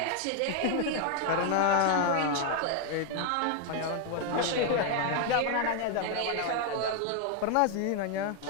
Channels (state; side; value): different; both; correlation 0.00